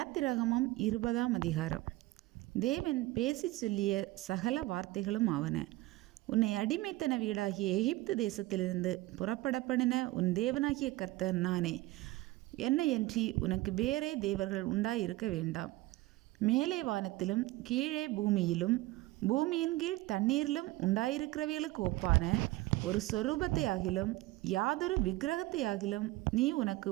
20ஆம் அதிகாரம். தேவன் பேசி சொல்லிய சகல வார்த்தைகளும் ஆவன. உன்னை அடிமைத்தன வீடாகிய எகிப்து தேசத்திலிருந்து புறப்படப்படின உன் தேவனாகிய கர்த்தர் நானே. என்னையன்றி உனக்கு வேறே தேவர்கள் உண்டாயிருக்க வேண்டாம். மேலே வானத்திலும் கீழே பூமியிலும் பூமியின் கீழ் தண்ணீரிலும் உண்டாயிருக்கிறவைகளுக்கு ஒப்பான ஒரு சொரூபத்தை ஆகிலும் யாதொரு விக்கிரகத்தை ஆகிலும் நீ உனக்கு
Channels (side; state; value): left; quieter; 18.7 dB